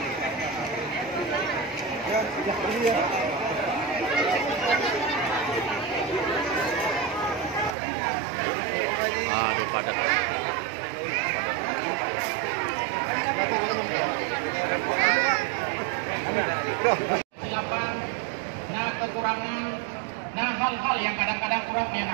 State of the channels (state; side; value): drops out; left; at 7.8 s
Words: Silakan, nah kekurangan, nah hal-hal yang kadang-kadang kurang